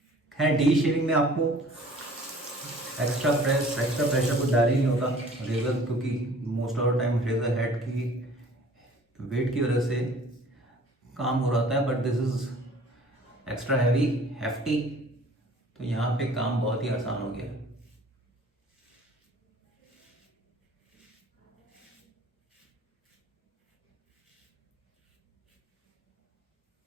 खैर डी शेविंग में आपको एक्स्ट्रा प्रेशर कुछ डाल ही नहीं होता रेजर, क्योंकि most of the time razor head की वेट की वजह से काम हो रहा है। But this is extra heavy, hefty, तो यहाँ पे काम बहुत ही आसान हो गया है।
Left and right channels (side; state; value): both; normal; correlation 0.51